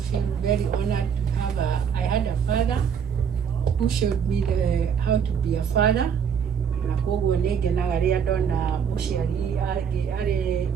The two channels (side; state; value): left; quieter; 7.3 dB